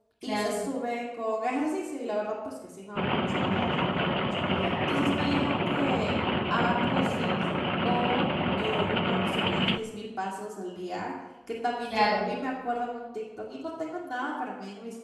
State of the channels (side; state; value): both; identical; correlation 1.00